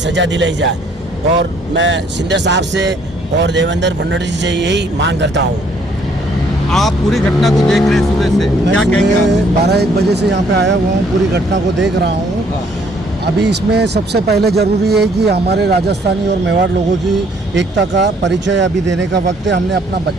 दिलाई जाए। और मैं शिंदे साहब से और देवेंद्र फडणवीस जी से यही मांग करता हूँ। आप पूरी घटना को देख रहे हैं सुबह से, क्या कहेंगे? 12-1 बजे से यहाँ पे आया हुआ हूँ, पूरी घटना को देख रहा हूँ। अभी इसमें सबसे पहले ज़रूरी है कि हमारे राजस्थानी और मेवाड़ लोगों की एकता का परिचय अभी देने का वक्त है। हमने अपना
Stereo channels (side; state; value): both; normal; correlation 0.64